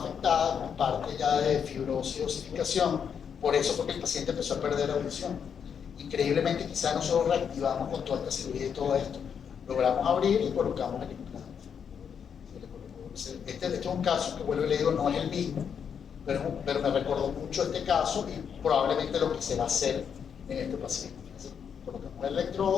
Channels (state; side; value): quieter; right; 7.4 dB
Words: afectada con parte ya de fibrosis y osificación, por eso fue que el paciente empezó a perder la audición. Increíblemente, quizás nosotros reactivamos con toda esta cirugía y todo esto, logramos abrir y colocamos el implante. Este es un caso que, vuelvo y le digo, no es el mismo, pero me recordó mucho este caso y probablemente lo que se va a hacer en este paciente. Entonces, colocamos el